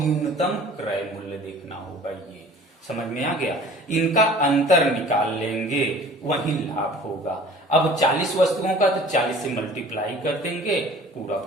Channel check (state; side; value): normal; both; correlation 0.47